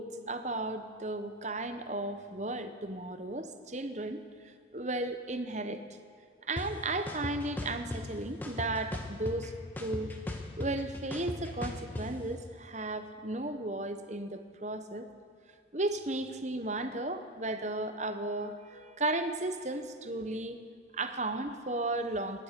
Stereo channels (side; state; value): both; normal; correlation 0.24